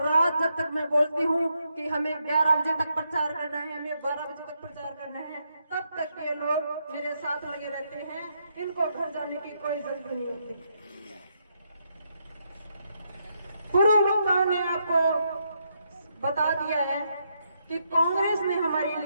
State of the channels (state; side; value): inverted; both; correlation -0.79